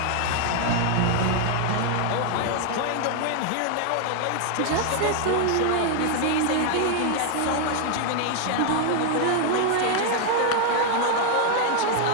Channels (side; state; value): both; different; correlation 0.00